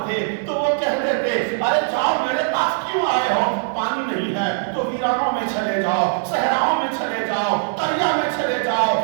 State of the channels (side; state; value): left; silent; 61 dB below the other